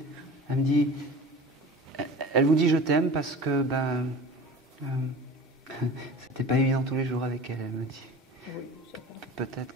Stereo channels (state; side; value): normal; both; correlation 0.37